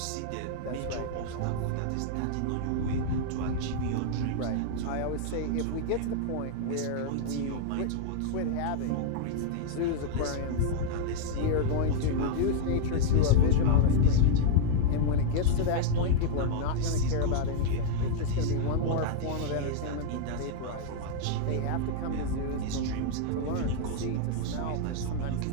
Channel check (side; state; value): both; different; correlation 0.00